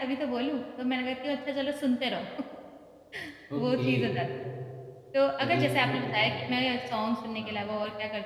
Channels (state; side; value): identical; both; correlation 1.00